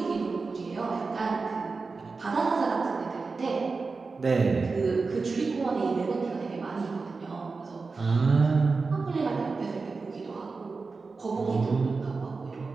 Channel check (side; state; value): left; quieter; 4.3 dB